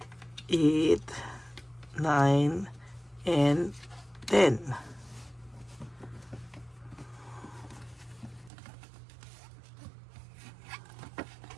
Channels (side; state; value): left; drops out; at 8.5 s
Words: 8, 9, and 10.